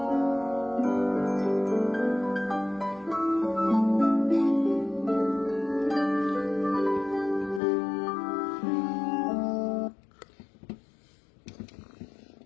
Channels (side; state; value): right; drops out; at 7.6 s